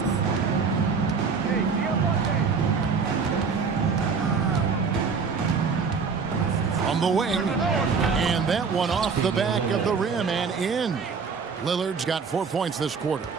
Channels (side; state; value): left; quieter; 5.4 dB